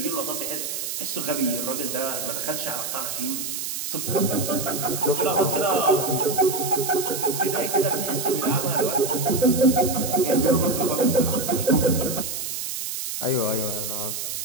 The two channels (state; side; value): noise; right; hiss, 4 dB below the sound